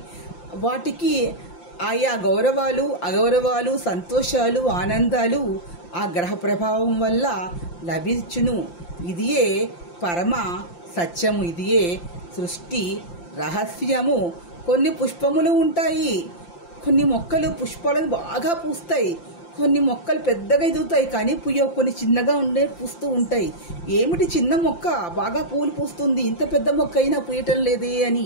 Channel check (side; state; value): right; late; 5.8 ms